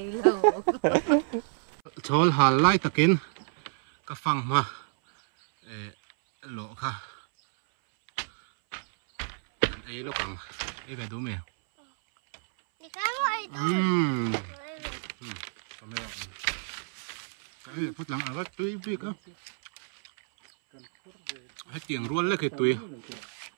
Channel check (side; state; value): left; silent; 59 dB below the other